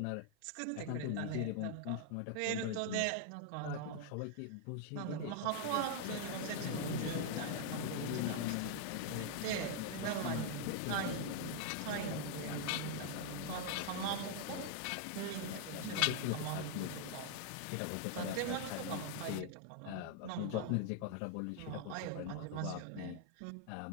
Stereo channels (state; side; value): different; both; correlation 0.00